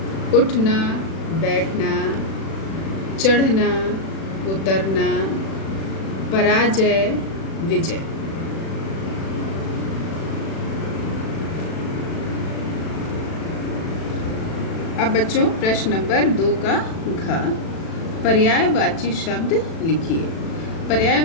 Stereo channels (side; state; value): right; late; 36 ms